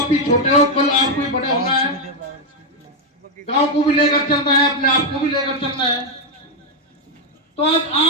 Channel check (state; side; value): normal; both; correlation 0.02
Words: भी छोटे हो, कल आपको भी बड़े होना है। गांव को भी लेकर चलना है, अपने आप को भी लेकर चलना है। तो आज